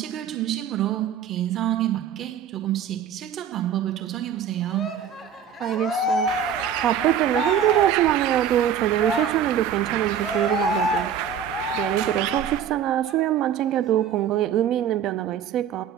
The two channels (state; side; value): quieter; left; 8.4 dB